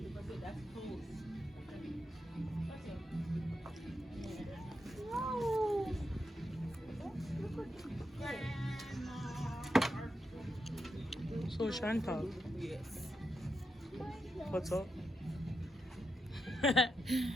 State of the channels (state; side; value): normal; both; correlation 0.85